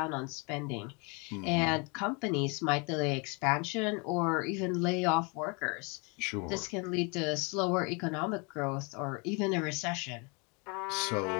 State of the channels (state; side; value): quieter; right; 31.8 dB